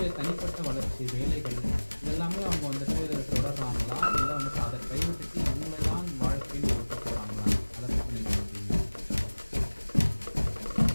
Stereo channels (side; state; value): both; inverted; correlation -1.00